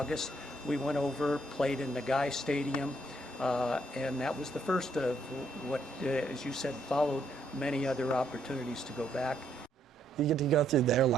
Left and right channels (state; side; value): normal; both; correlation 0.72